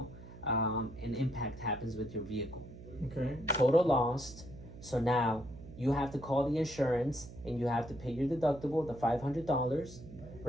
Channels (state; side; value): noise; right; hum, 15 dB below the sound